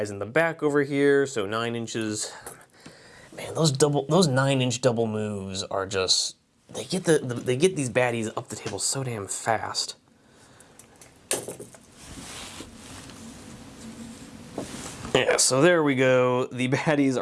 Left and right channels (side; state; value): both; identical; correlation 1.00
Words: in the back over here. So 9 inches. Man, those 9-inch double moves are just, they get these baddies up the table so damn fast. Yeah, so there we go. The baddies